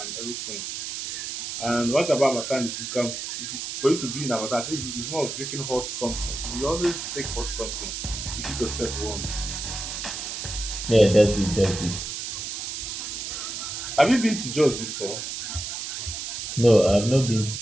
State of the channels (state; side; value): noise; right; hiss, 5 dB below the sound